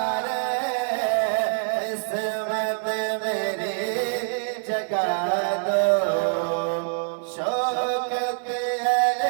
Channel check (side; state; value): left; silent; digital silence